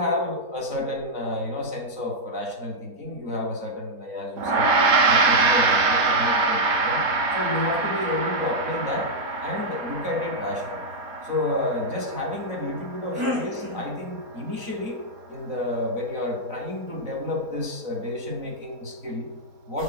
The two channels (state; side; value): late; left; 4.3 ms